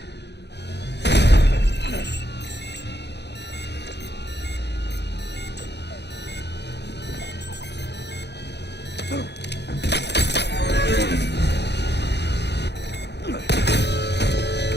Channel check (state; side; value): late; right; 0.49 ms